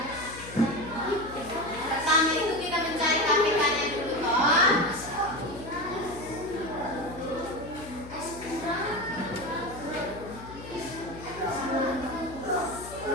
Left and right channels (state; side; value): noise; left; hum, 14 dB below the sound